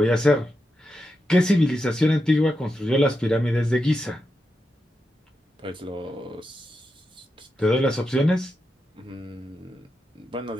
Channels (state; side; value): normal; both; correlation 0.87